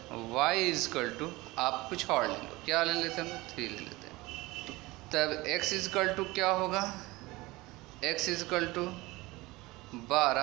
y इजकल टू, आप कुछ और ले लो, क्या ले लेते हैं हम 3 ले लेते हैं, तब x इजकल टू क्या होगा, x is equal to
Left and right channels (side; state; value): left; quieter; 21.0 dB